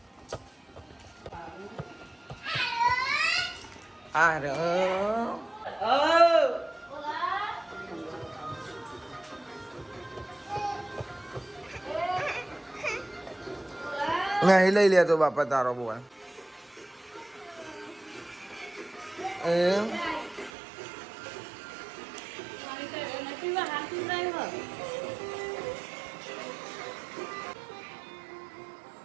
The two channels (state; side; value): drops out; left; at 20.5 s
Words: આ રે નહીં લઈ લે તો બાપા તારો બોલ એમ